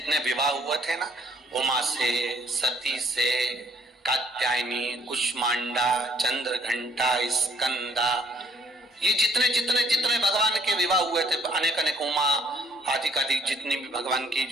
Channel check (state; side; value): normal; both; correlation 0.63